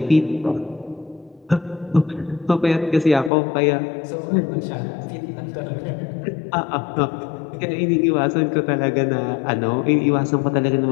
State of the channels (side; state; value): right; drops out; at 3.3 s